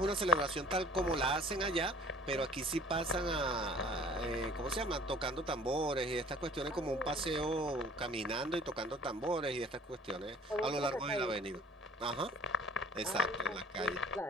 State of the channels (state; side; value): normal; both; correlation 0.50